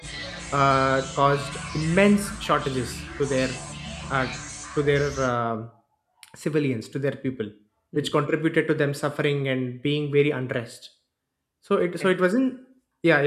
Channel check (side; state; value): both; identical; correlation 1.00